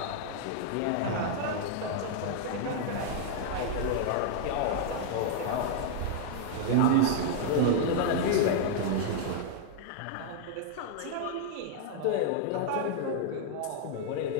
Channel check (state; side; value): different; both; correlation 0.00